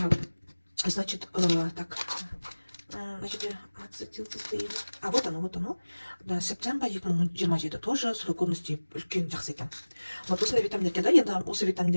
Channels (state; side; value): inverted; both; correlation -1.00